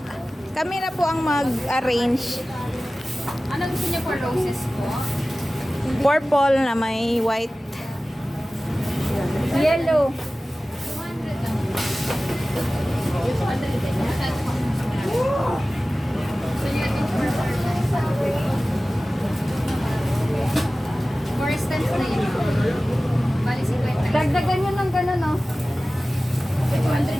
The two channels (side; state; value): both; normal; correlation 0.96